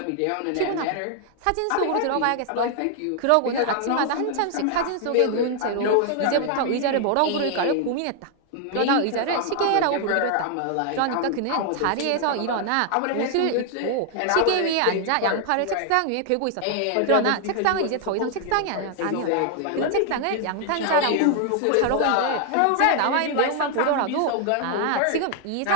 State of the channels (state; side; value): different; both; correlation 0.00